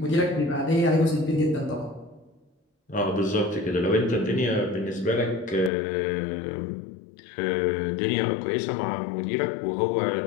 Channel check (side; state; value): right; drops out; at 5.7 s